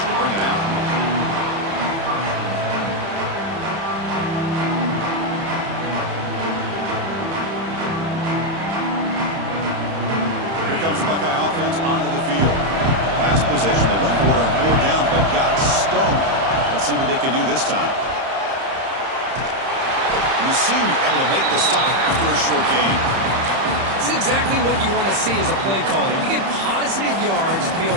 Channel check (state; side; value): late; left; 30 ms